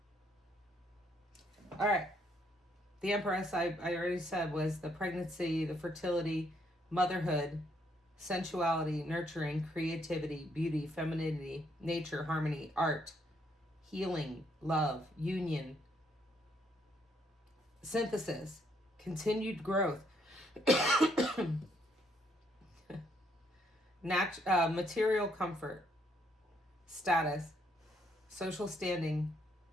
All right. The Empress, I already said, was the pregnancy, the fertility, motherhood, sensuality, nurturing, creativity, beauty, femininity, nature, harmony, art, healing, love, union, synthesis, continued growth, material comfort, status, social standing,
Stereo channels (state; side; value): normal; both; correlation 0.71